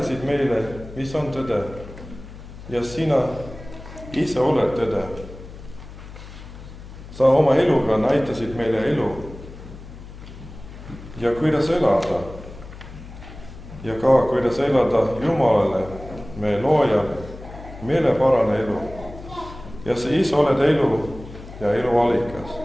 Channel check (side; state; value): left; noise; hum, 15 dB below the sound